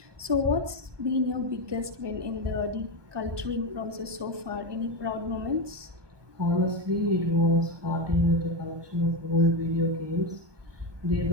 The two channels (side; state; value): left; late; 1.2 ms